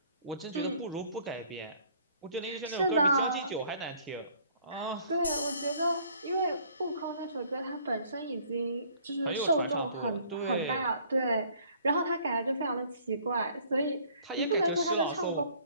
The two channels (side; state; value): both; inverted; correlation -0.58